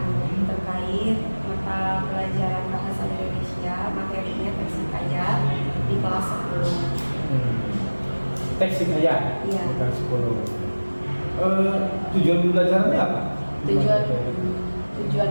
terkait mata pelajaran bahasa Indonesia, materinya teks hikayat di kelas 10. Teks hikayat? Iya. Bukan 10. Tujuan pembelajarannya apa?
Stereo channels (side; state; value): both; inverted; correlation -1.00